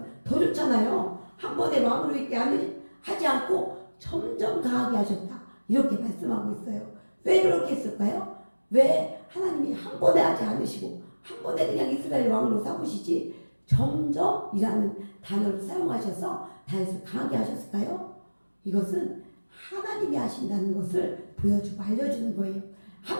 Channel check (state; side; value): inverted; both; correlation -1.00